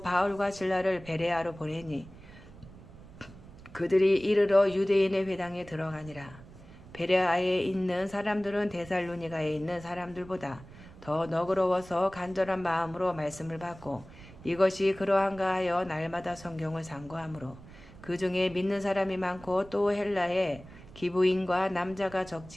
바울과 실라를 베레아로 보내니 그들이 이르러 유대인의 회당에 들어가니라. 베레아에 있는 사람들은 데살로니가에 있는 사람들보다 더 너그러워서 간절한 마음으로 말씀을 받고 이것이 그러한가 하여 날마다 성경을 상고하므로 그 중에 믿는 사람이 많고 또 헬라에 기부인과 남자가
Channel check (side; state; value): right; noise; rumble, 19 dB below the sound